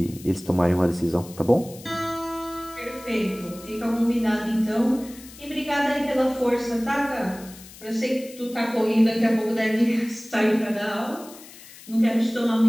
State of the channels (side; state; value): left; noise; hiss, 19 dB below the sound